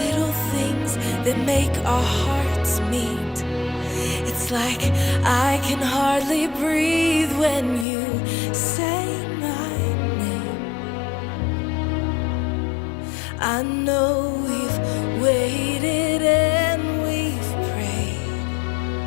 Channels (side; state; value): right; drops out; at 7.9 s